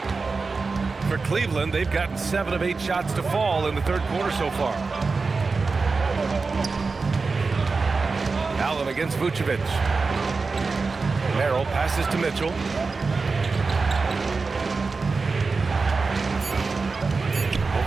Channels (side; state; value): left; quieter; 4.3 dB